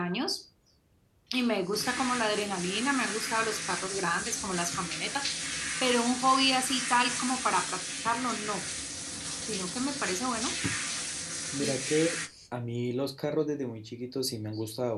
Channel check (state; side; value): identical; both; correlation 1.00